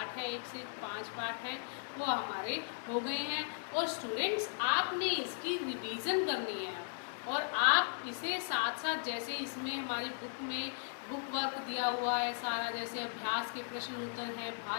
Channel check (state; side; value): silent; right; digital silence